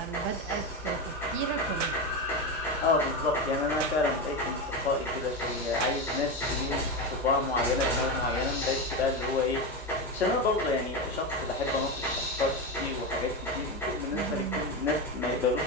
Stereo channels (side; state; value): both; normal; correlation 0.16